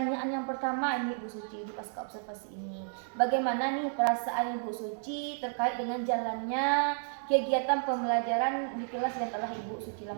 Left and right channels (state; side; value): silent; left; digital silence